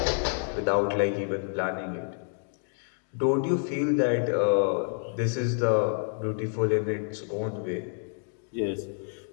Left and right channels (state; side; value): silent; right; 59 dB below the other